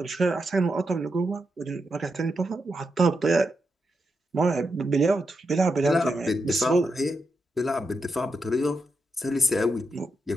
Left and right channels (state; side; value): normal; both; correlation 0.84